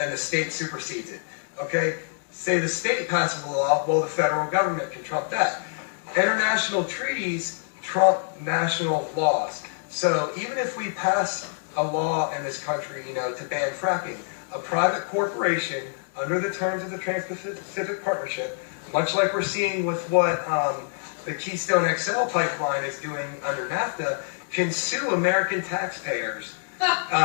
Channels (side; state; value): right; silent; digital silence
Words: the state supersedes it, okay? Say the state passes a law, well, the federal government can trump that. International treaties trump national laws. So even if we pass a law in this country, to ban fracking, a private corporation, under the terms of the Trans-Pacific Partnership, much like we're seeing with what the Keystone XL pipeline is doing under NAFTA, can sue American taxpayers